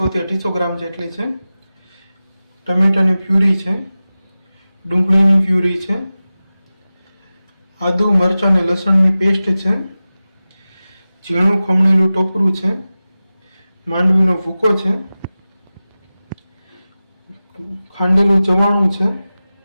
થી 250 ગ્રામ જેટલી છે. ટમેટાની પ્યુરી છે, ડુંગળીની પ્યુરી છે, આદુ મરચાં અને લસણની પેસ્ટ છે, ઝીણું ખમણેલું ટોપરું છે, માંડવીનો ભૂકો છે, ખાંડેલું ચવાણું છે,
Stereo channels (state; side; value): inverted; both; correlation -0.96